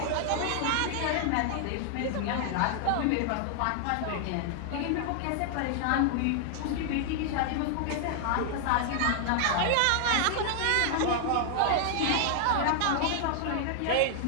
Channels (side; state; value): both; different; correlation 0.00